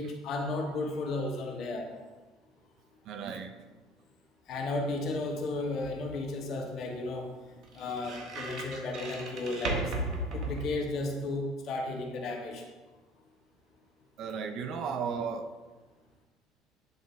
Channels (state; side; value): normal; both; correlation 0.50